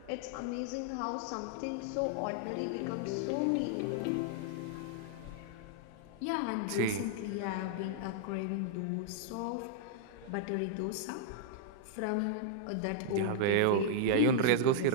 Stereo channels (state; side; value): different; both; correlation -0.01